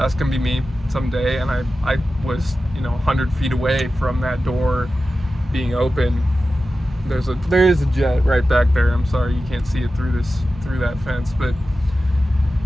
gonna be me someday. And I was, 100 feet away from that door being open. There is a jet right back there. I'm sorry you can't see it through that fence, but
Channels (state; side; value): normal; both; correlation 0.94